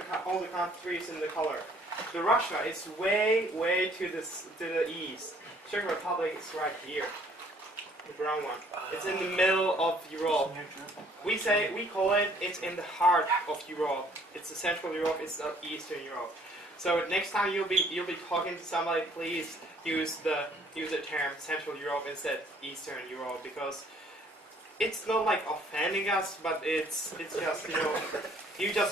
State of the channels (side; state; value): both; normal; correlation 0.60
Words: countries in the color. The Russia is way to the east. Czech Republic is right here, the brown one. It's in the middle of Europe. We call it. It's in the heart of Europe. It's the Central Europe. It's the Eastern Europe. So next time you'll be talking to somebody, please use the term Central Europe instead Eastern Europe, because it's not like offending us, but it's just, you know, you